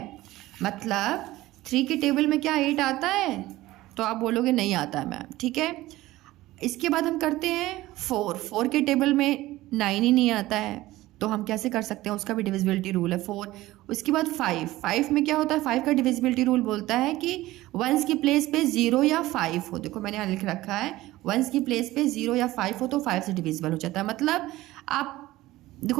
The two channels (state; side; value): quieter; left; 17.2 dB